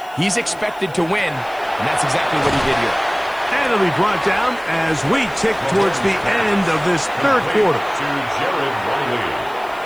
he's expected to win, and that's exactly what he did here. And it'll be brought down as we tick towards the end of this third quarter.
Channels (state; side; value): noise; left; hiss, 25 dB below the sound